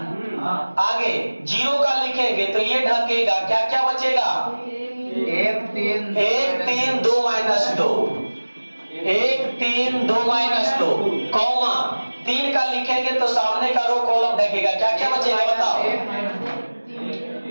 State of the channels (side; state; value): both; inverted; correlation -1.00